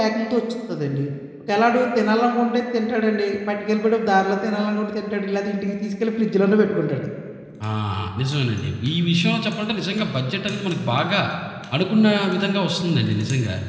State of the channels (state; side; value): identical; both; correlation 1.00